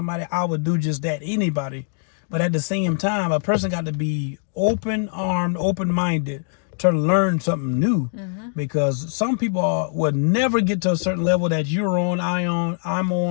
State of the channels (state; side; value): silent; right; digital silence